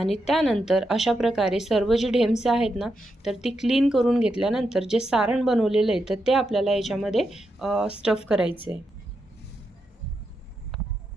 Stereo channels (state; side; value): normal; both; correlation 0.85